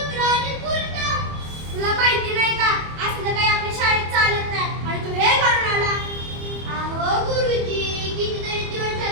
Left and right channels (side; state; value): left; late; 25 ms